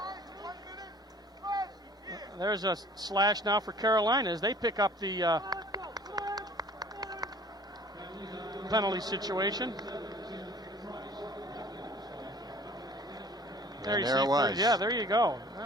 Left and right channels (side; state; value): both; normal; correlation 0.50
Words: There's a slash now for Carolina as they pick up the penalty situation. There it was. Yeah, there you go.